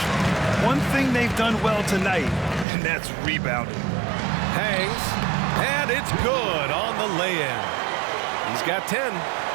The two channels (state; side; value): drops out; left; at 2.7 s